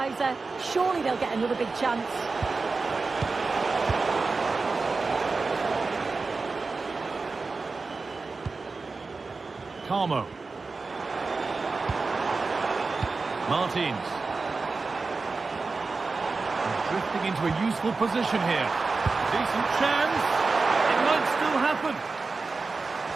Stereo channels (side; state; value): left; quieter; 4.0 dB